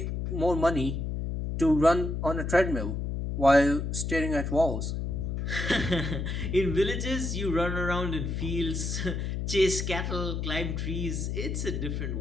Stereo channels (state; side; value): noise; left; hum, 2 dB below the sound